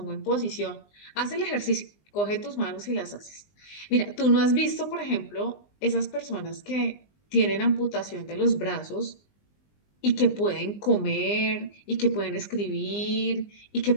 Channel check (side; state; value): right; late; 20 ms